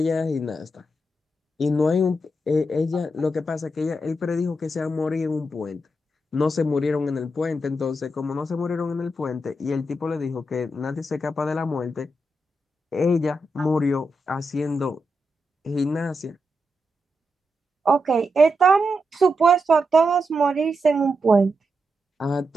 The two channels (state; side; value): normal; both; correlation 0.85